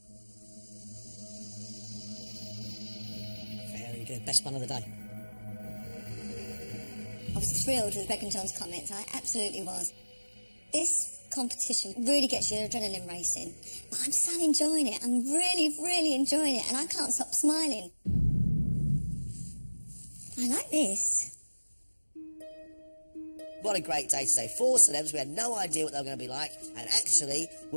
Very good. Best one of the day. I was thrilled with Greg and John's comments. I absolutely was. This competition really gets your adrenaline racing. But I'm so enjoying it. I'm really, really enjoying it, and I can't stop smiling. I like this. What a great day today. 4 celebs. We had no idea what they were going to be like, and actually,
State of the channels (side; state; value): both; inverted; correlation -1.00